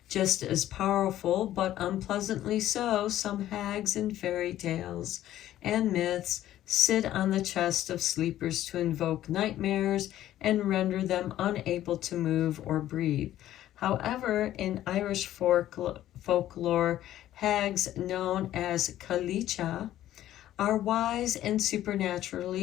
Just as powerful, but unpleasantly so, some hags in fairy tales and myths sit on the chest of sleepers to invoke nightmares and render them unable to move or breathe. However, in Irish folklore, hags known as Cailleach are wise and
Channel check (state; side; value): quieter; right; 13.0 dB